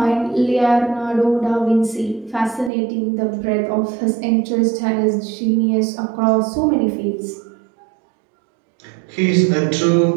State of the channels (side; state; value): left; drops out; at 2.7 s